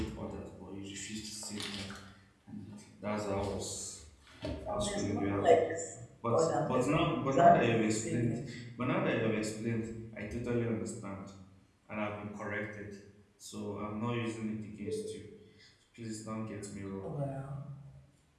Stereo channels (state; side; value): identical; both; correlation 1.00